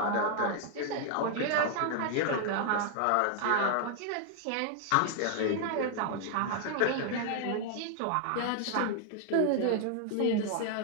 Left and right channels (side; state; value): both; different; correlation 0.00